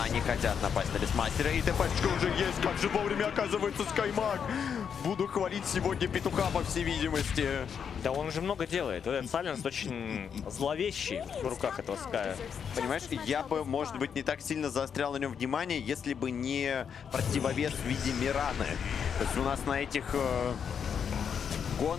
они хотят напасть на Бестмастера. И ТПшка уже есть. Как же вовремя оказывается Скаймаг. буду хвалить сегодня петуха, по всей видимости. Да он уже много делает. Вот этот Сайленс очень зловещий в руках этого Ская. Понимаешь, я бы, может быть, не так сильно заострял на нем внимание, если бы не противовес в виде Мираны. То есть у нас на этих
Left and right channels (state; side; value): quieter; right; 7.3 dB